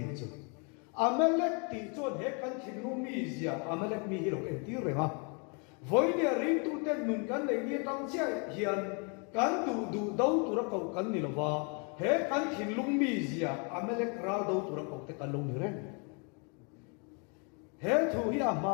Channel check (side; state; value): right; quieter; 35.6 dB